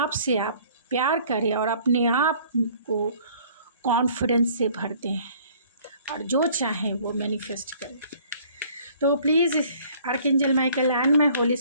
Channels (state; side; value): inverted; both; correlation -0.55